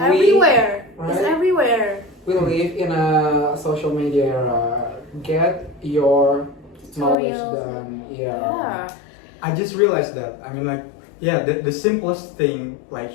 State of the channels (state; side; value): drops out; right; at 7.2 s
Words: It's right? everywhere. We live in a social media era. Get your knowledge Tutorials. done. Yeah. Yeah. I just realized that. I mean, like, yeah, the simplest thing like